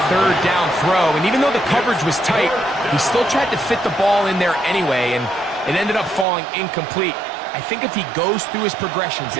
third down throw, and even though the coverage was tight, he still tried to fit the ball in there anyway, and it ended up falling incomplete. I think if he goes through his progressions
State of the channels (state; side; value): drops out; left; at 6.2 s